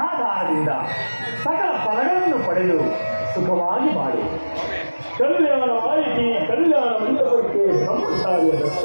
ಸಕಲ ಫಲಗಳನ್ನು ಪಡೆದು ಸುಖವಾಗಿ ಬಾಳು. ಕಲ್ಯಾಣವಾಯಿತಿ ಕಲ್ಯಾಣ ಮಂಟಪಕ್ಕೆ ಬ್ರಹ್ಮಚಾರಿಯ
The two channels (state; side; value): inverted; both; correlation -1.00